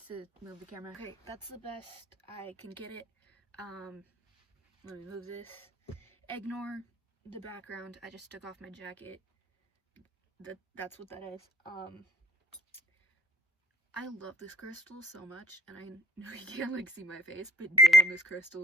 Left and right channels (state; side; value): normal; both; correlation 0.61